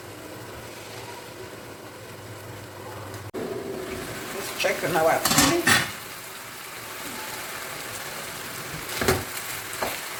Just check on our pan.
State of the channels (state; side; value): identical; both; correlation 1.00